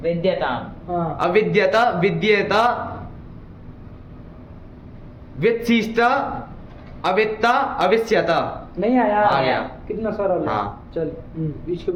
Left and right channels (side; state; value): both; identical; correlation 1.00